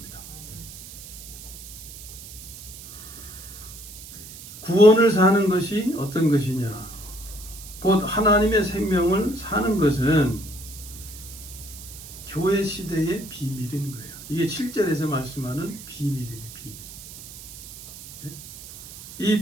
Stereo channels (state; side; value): noise; right; hiss, 14 dB below the sound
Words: 구원을 사는 것이 어떤 것이냐? 곧 하나님의 생명을 사는 것은 교회 시대의 비밀인 거예요. 이게 7절에서 말씀하는 비밀이에요. 비밀. 네? 이